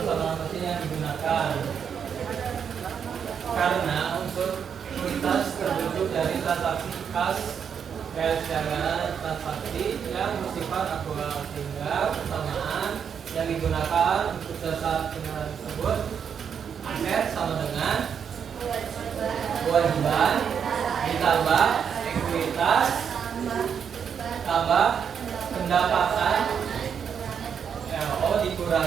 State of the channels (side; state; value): left; quieter; 7.4 dB